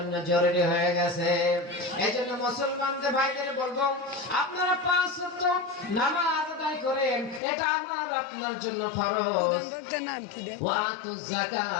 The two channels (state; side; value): drops out; right; at 7.4 s